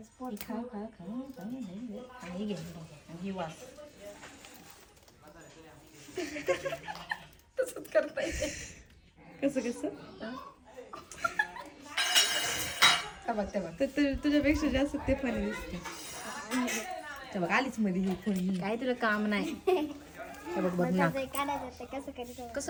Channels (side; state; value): both; identical; correlation 1.00